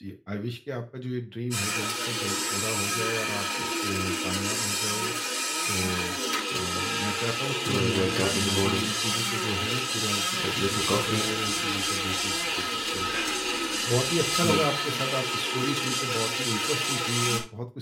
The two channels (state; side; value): identical; both; correlation 1.00